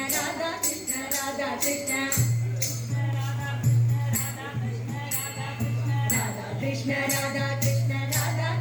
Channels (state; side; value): identical; both; correlation 1.00